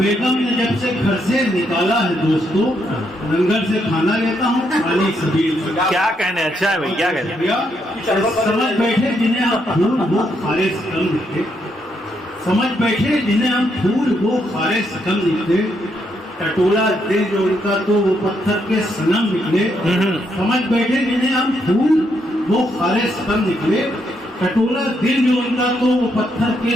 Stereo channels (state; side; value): normal; both; correlation 0.77